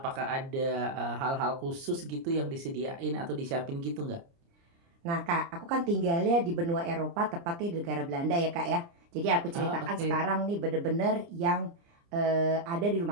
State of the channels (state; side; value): late; left; 29 ms